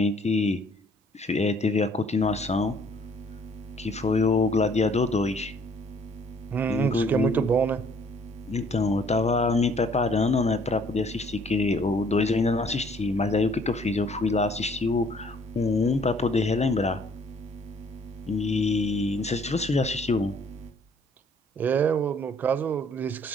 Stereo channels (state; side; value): normal; both; correlation 0.60